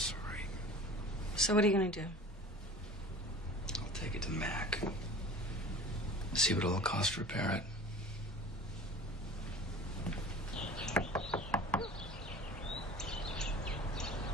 So what are you going to do? I'll take it to Mac. See what it'll cost to repair it.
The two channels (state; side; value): normal; both; correlation 0.41